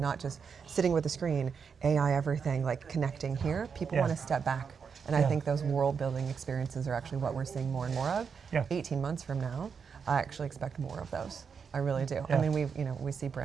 just sitting with a screen, AI everything, like connecting here. People want to step back. And I think those world building experiences are actually what we're seeing more and more of. 18 months from now, I actually expect more of those. I really do. I mean, we see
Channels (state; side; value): quieter; left; 6.2 dB